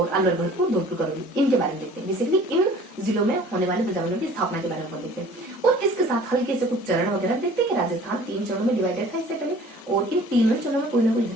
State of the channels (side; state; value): both; normal; correlation 0.49